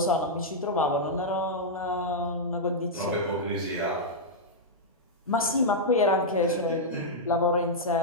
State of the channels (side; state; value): both; normal; correlation -0.07